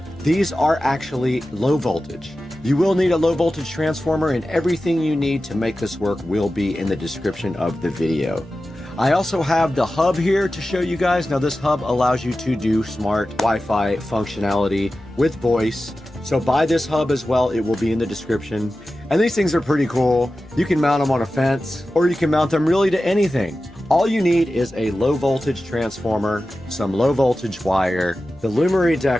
These are actually low voltage. You will need a low voltage transformer, and everything you need to make this work will be in the description of the video. I also have the hub here to show you guys. Now this hub allows you to do smart Wi-Fi functionality with voice. So buy this hub as well, it will be in the description. And these things are pretty cool. You can mount them on a fence, or you can mount them really to anything. All you need is a low voltage transformer, some low voltage wire, the Lumery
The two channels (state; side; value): noise; left; hum, 26 dB below the sound